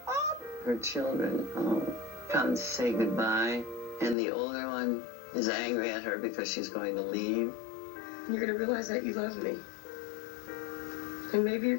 Oh. Her children come to say goodbye, and the older one is angry at her because she's going to leave. You're going to realize that you love me. And maybe you're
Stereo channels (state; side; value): drops out; right; at 4.2 s